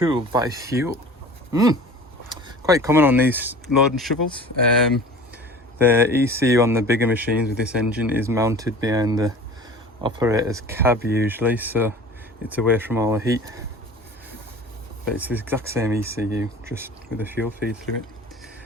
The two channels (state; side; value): normal; both; correlation 0.41